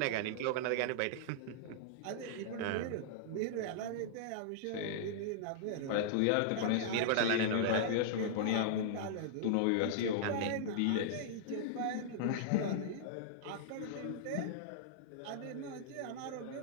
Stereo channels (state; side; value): different; both; correlation -0.02